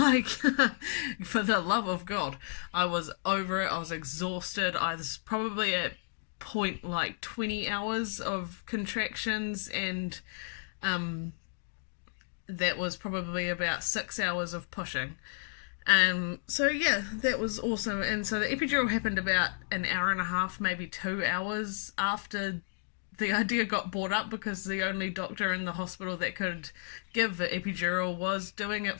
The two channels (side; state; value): right; silent; digital silence